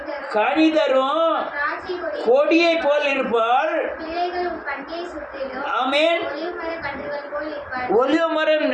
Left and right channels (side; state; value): both; identical; correlation 1.00